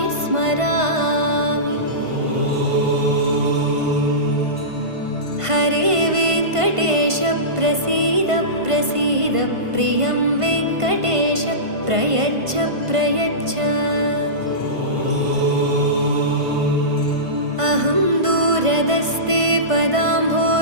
स्मरामि। हरे वेङ्कटेश प्रसीद प्रसीद प्रियं वेङ्कटेश प्रयच्छ प्रयच्छ। अहं दूरदस्ते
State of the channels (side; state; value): left; late; 1.5 ms